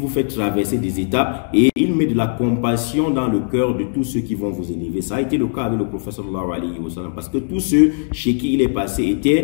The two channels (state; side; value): silent; right; 66 dB below the other